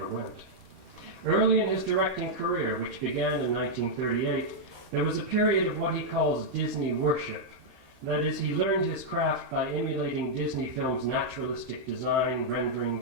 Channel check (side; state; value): left; late; 15 ms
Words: went. Early in his directing career, which began in 1938, there was a period of what he calls Disney worship. That is, he learned his craft by emulating Disney films' naturalistic design, rendering,